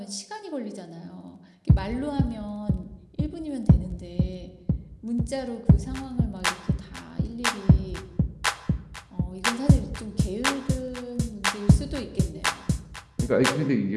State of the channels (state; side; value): identical; both; correlation 1.00